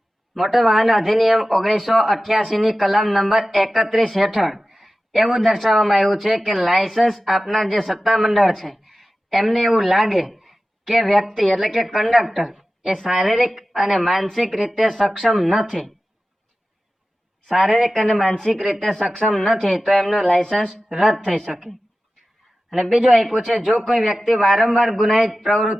મોટર વાહન અધિનિયમ 1988 ની કલમ નંબર 31 હેઠળ એવું દર્શાવવામાં આવ્યું છે કે લાયસન્સ આપનાર જે સત્તામંડળ છે એમને એવું લાગે કે વ્યક્તિ એટલે કે કંડક્ટર એ શારીરિક અને માનસિક રીતે સક્ષમ નથી, તો એમનું લાયસન્સ રદ થઈ શકે. અને બીજું આપ્યું છે, જો કોઈ વ્યક્તિ વારંવાર ગુનાહિત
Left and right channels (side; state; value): both; normal; correlation 0.95